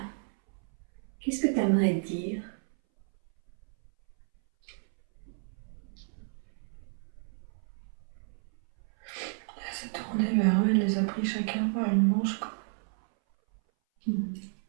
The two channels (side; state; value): left; silent; 57 dB below the other